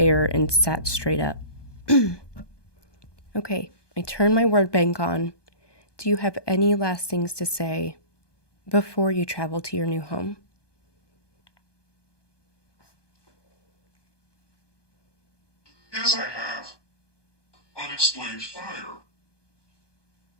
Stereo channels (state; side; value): late; right; 1.2 ms